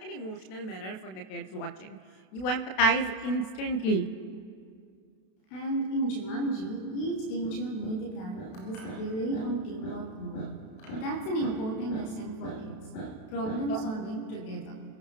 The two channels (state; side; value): late; right; 32 ms